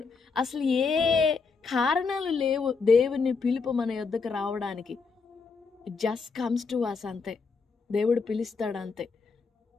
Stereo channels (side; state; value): right; quieter; 4.8 dB